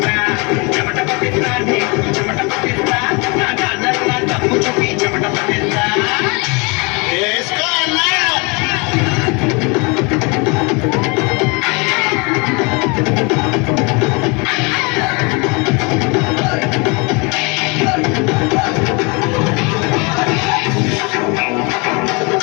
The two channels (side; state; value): right; quieter; 29.8 dB